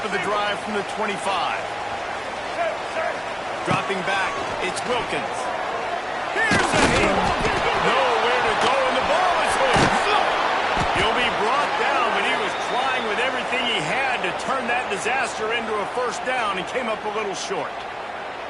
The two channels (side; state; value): both; identical; correlation 1.00